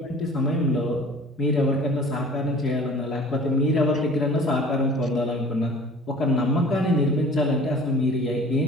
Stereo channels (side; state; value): both; normal; correlation 0.46